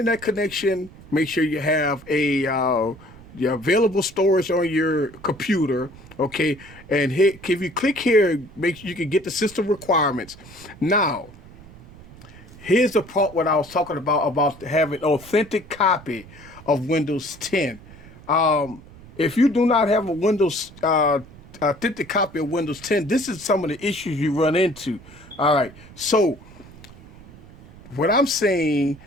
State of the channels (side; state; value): right; noise; rumble, 20 dB below the sound